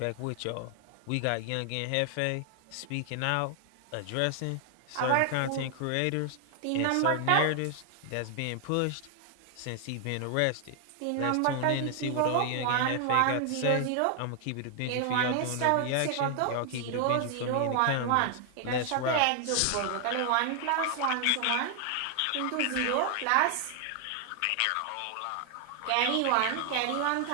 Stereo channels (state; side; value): different; both; correlation 0.00